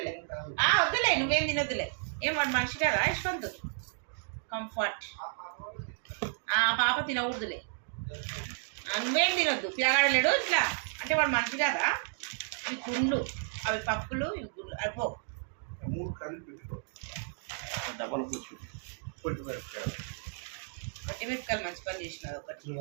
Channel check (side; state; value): left; silent; digital silence